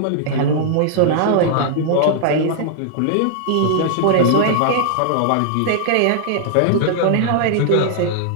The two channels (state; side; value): different; both; correlation -0.01